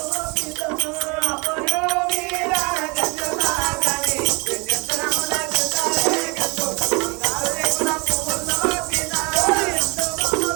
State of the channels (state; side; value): quieter; left; 29.0 dB